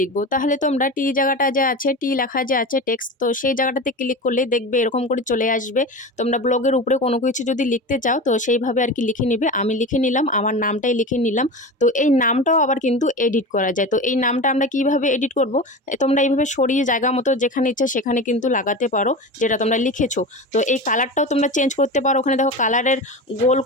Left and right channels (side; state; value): both; normal; correlation 0.28